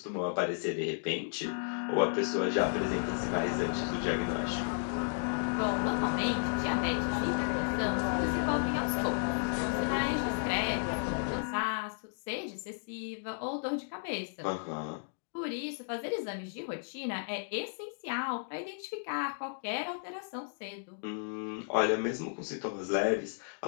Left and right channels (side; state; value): right; silent; digital silence